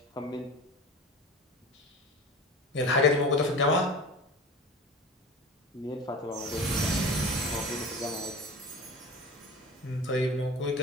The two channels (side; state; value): both; normal; correlation 0.34